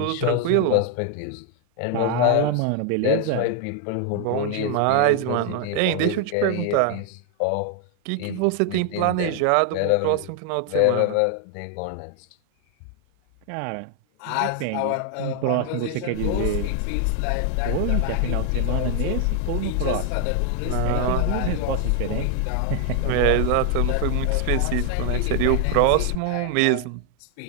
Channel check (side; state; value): both; different; correlation 0.00